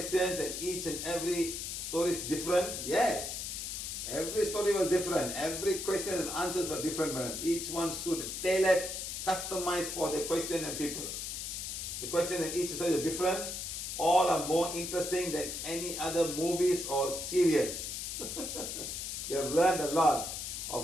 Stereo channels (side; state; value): left; noise; hiss, 5 dB below the sound